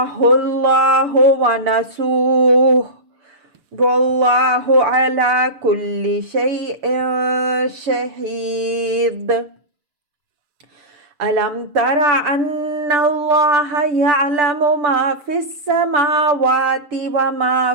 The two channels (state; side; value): late; left; 6.8 ms